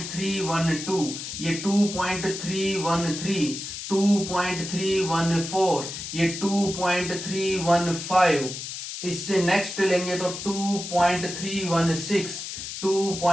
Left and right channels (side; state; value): left; noise; hiss, 7 dB below the sound